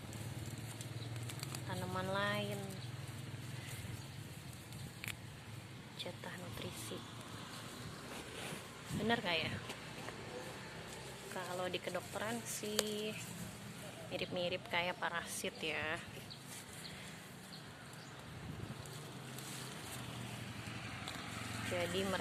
tanaman lain, jatah nutrisi. Bener gak ya? Kalau di kedokteran sih mirip-mirip kayak parasit ya. Jadi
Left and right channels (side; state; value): both; identical; correlation 1.00